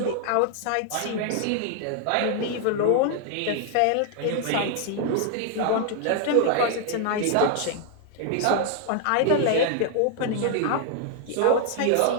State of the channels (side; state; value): both; different; correlation 0.00